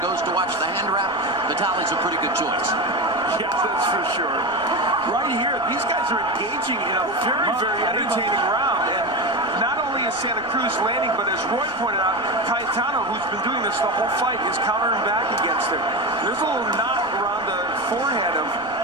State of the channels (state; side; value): noise; left; rumble, 23 dB below the sound